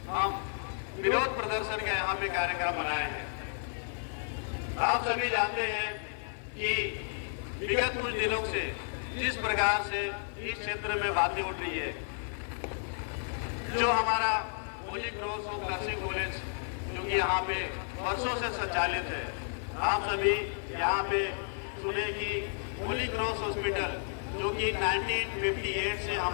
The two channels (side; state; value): right; silent; digital silence